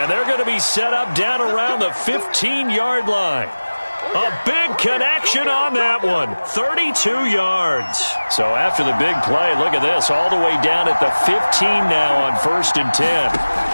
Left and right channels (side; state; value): both; inverted; correlation -1.00